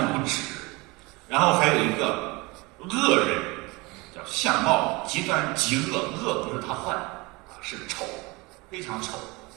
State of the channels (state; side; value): quieter; left; 24.7 dB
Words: 无指。然后还有一个恶人，叫相貌极端极恶，恶不是他坏是丑，非常丑，